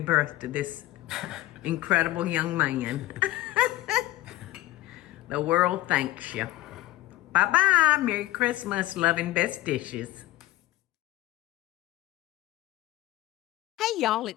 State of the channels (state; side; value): quieter; right; 16.7 dB